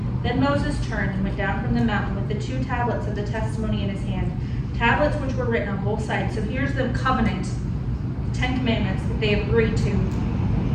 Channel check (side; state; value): both; identical; correlation 1.00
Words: Then Moses turned and went down from the mountain with the 2 tablets of the testimony in his hand, tablets which were written on both sides. So here's the covenant, 10 commandments that they have agreed to.